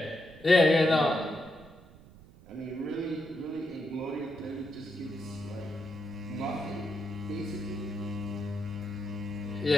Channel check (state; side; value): noise; right; rumble, 21 dB below the sound